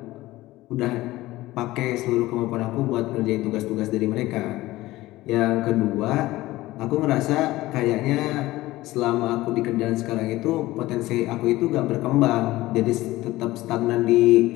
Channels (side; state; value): right; quieter; 17.7 dB